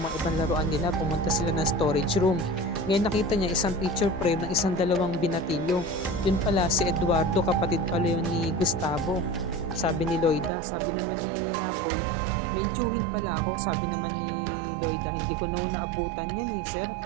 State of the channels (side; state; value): left; drops out; at 10.5 s